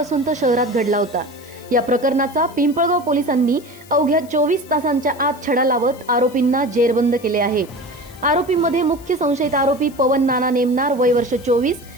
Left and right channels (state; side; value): noise; left; hiss, 23 dB below the sound